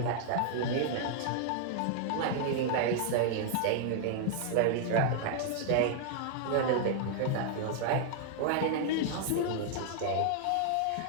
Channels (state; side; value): different; both; correlation -0.01